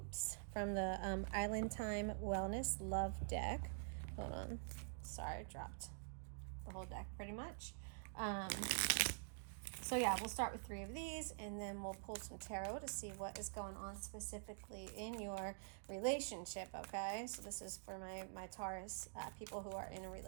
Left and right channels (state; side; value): silent; left; digital silence